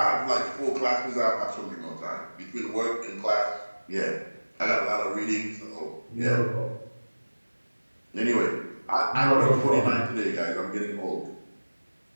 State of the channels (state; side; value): inverted; both; correlation -1.00